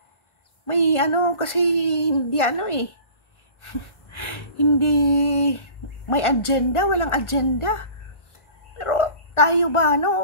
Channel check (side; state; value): right; late; 1.4 ms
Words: May kasi hindi hindi may agenda, walang agenda. Pero tayo ba,